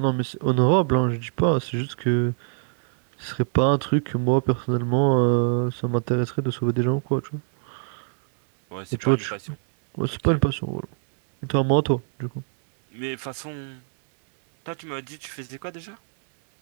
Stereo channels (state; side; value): silent; left; 63 dB below the other